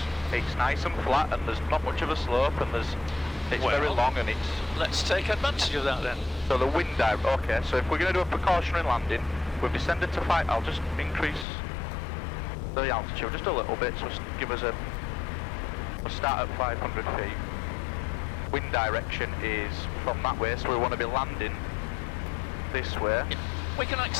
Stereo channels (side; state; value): right; drops out; at 11.5 s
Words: nice and flat and there's not much of a slope and it's very long and it's... Let's take advantage of that then. So the wind okay, so if we're going to do a precautionary landing, we've descended to 5, I'll just increase the altitude just a little bit, so give us we'll start at 500 feet. Wind direction is from that way, so we want to be landing this way. Yeah. We can